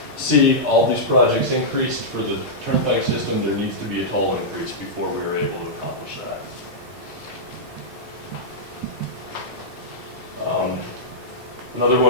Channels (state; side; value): normal; both; correlation -0.11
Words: See, all these projects increased for the turnpike system, there needs to be a toll increase before we are able to accomplish that. Another